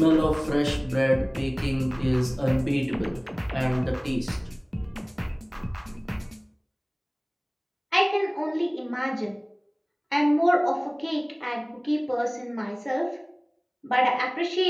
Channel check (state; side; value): identical; both; correlation 1.00